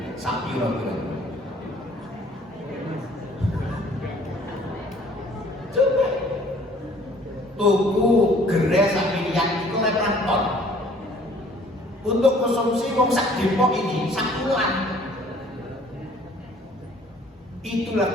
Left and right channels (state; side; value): normal; both; correlation 0.56